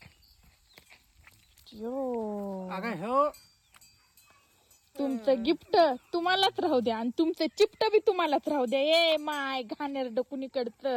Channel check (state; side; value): identical; both; correlation 1.00